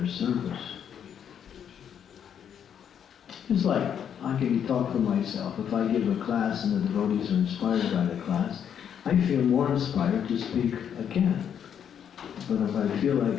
service. It's like, I can talk for myself. If I give a class and the devotees are inspired by the class, I feel more inspired to speak again. But if I feel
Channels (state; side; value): quieter; right; 8.6 dB